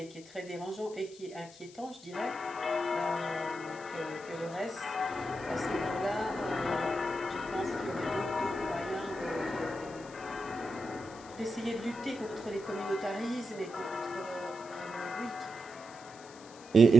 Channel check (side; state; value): left; noise; hiss, 20 dB below the sound